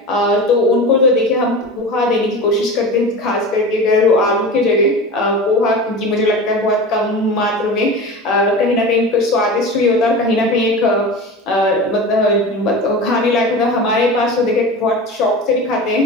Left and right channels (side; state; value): both; normal; correlation 0.31